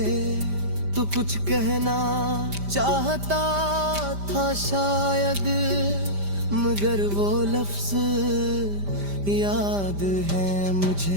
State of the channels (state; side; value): late; left; 5.0 ms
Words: तू कुछ कहना चाहता था शायद, मगर वो लफ्ज याद है